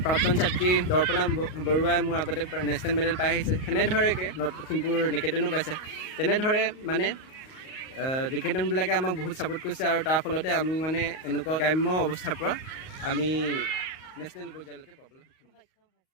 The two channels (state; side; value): late; right; 38 ms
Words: প্ৰাক্তন ছাত্ৰী দৰ্পণা বৰুৱাই মোৰ আগতে নেশ্যনেল মেডেল পাই আহিছে সেনেধৰণেকৈ নৰ্থ লখিমপুৰ নিকেতনো পাইছে তেনেদৰে মানে নিকেতনবিলাকে আমাক বহুত ছাপোৰ্ট কৰিছে আৰু তাৰ ফলতে আমি মানে এনেকুৱা গ্ৰাম্য অৱস্থাৰ পৰা আমি নেশ্যনেল পৰ্যায়লৈকে পাবলৈ সক্ষম হৈছোঁ।